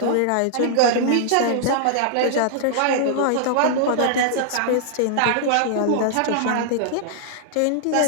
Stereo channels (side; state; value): both; different; correlation -0.01